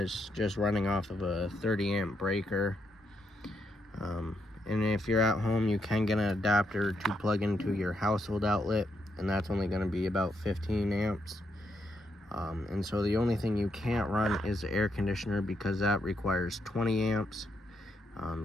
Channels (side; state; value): both; normal; correlation 0.79